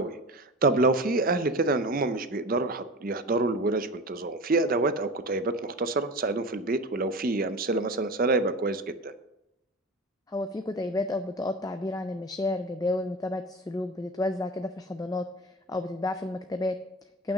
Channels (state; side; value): normal; both; correlation 0.31